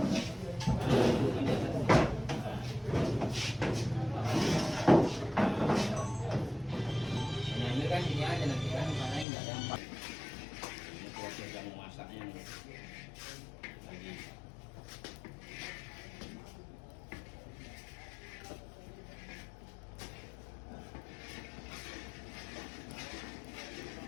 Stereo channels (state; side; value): drops out; right; at 9.2 s